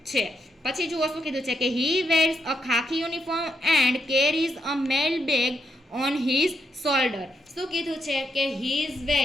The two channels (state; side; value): normal; both; correlation 0.80